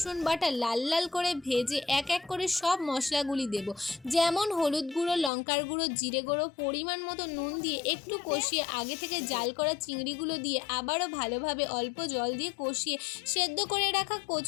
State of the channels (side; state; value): right; drops out; at 5.3 s